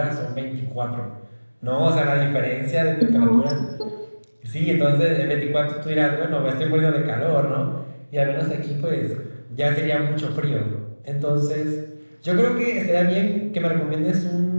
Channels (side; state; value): both; inverted; correlation -1.00